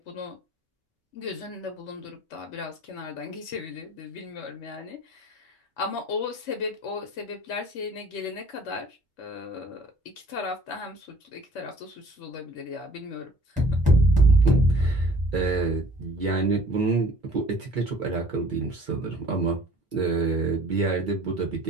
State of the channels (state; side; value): normal; both; correlation 0.52